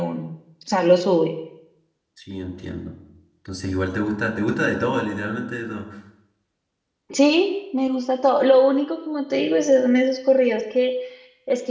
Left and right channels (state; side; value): identical; both; correlation 1.00